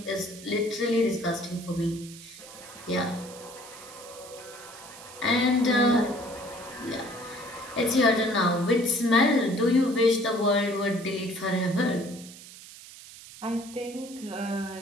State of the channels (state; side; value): noise; right; hiss, 17 dB below the sound